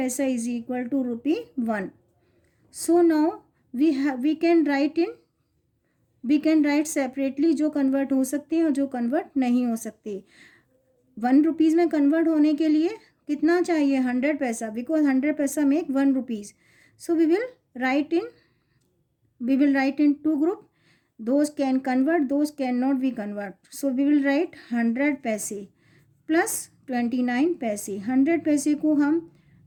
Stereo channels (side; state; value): both; identical; correlation 1.00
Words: is equal to rupee 1. So now we can write separately जो convert हो सकते हैं और जो convert नहीं हो सकते. 1 रुपीज़ में कन्वर्ट होने के लिए कितना चाहिए? 100 पैसा, because 100 paisa make 1 rupees. So we will write in 2 group. Those can convert, those can not be convert. So we will write 100 paise plus 29 पैसे. 100 पैसे को हम